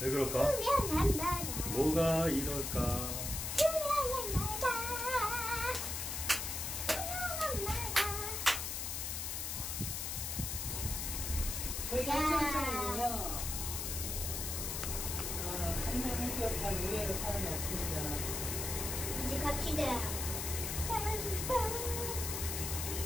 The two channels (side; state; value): left; noise; hiss, 3 dB below the sound